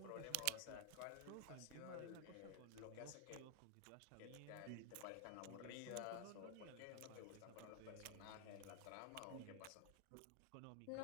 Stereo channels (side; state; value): both; different; correlation 0.00